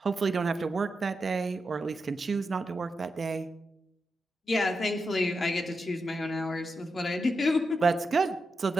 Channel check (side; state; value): both; normal; correlation 0.87